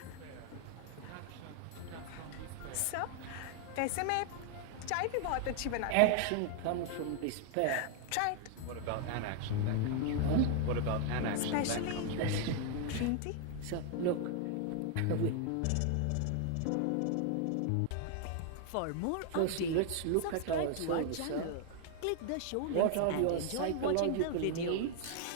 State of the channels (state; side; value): different; both; correlation 0.00